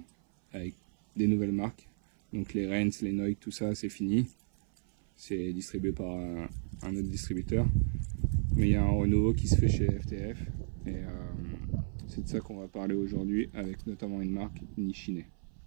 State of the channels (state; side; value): silent; left; 56 dB below the other